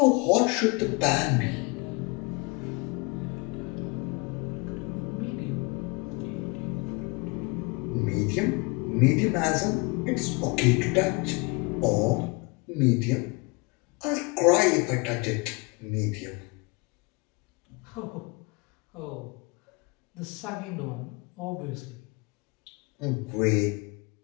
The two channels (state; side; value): quieter; right; 28.4 dB